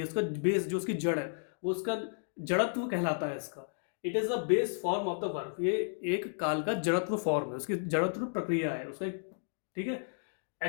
उसका बेस जो उसकी जड़ है, वो उसका जड़त्व कहलाता है इसका. It is the base form of the verb. ये एक काल का जड़त्व फॉर्म है, उसकी जड़त्व प्रक्रिया है उसका. ठीक है.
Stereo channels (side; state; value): right; silent; digital silence